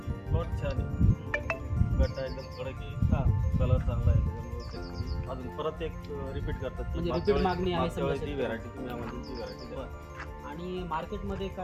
प्लॉट छान आहे, गट्टा एकदम कडक आहे, हां, कलर चांगला आहे, त्याच्यामुळे शेतकरी अजून परत एक रिपीट करतात. म्हणजे repeat मागणी आहे समजा ती व्हरायटी तुम्ही आम्हाला ती व्हरायटी द्या. आणि मार्केटमध्ये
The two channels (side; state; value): both; identical; correlation 1.00